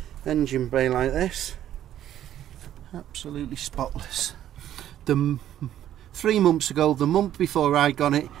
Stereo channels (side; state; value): left; quieter; 11.6 dB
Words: engine bay like this. Absolutely spotless. 3 months ago, the month before I got it,